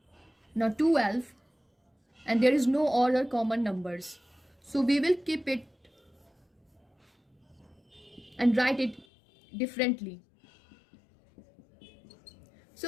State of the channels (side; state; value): right; drops out; at 9.1 s